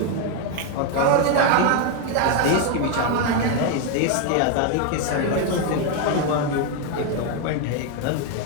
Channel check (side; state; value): both; different; correlation 0.01